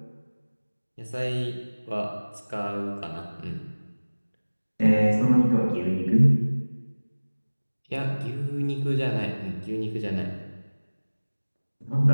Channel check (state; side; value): inverted; both; correlation -1.00